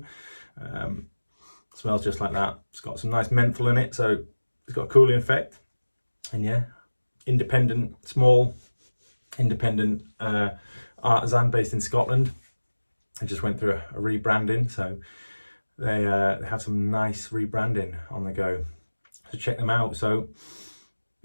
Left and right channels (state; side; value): inverted; both; correlation -1.00